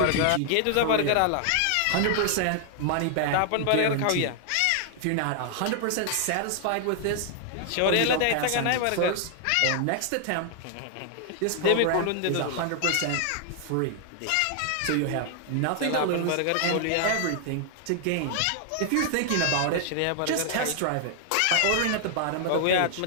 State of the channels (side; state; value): both; different; correlation 0.00